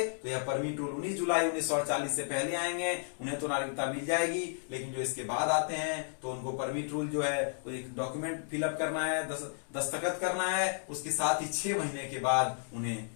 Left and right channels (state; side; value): silent; right; digital silence